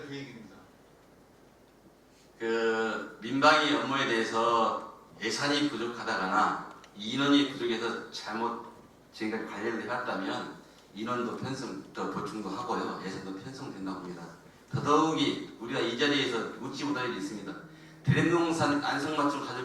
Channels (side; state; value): both; identical; correlation 1.00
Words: 계획입니다. 그 민방위 업무에 대해서 예산이 부족하다거나 인원이 부족해서 잘못 지금까지 관리를 해왔다면 인원도 더 보충도 하고요. 예산도 편성된다고 봅니다. 더더욱이 우리가 이 자리에서 묻지 못할 일이 있습니다. 대림동산 안성맞춤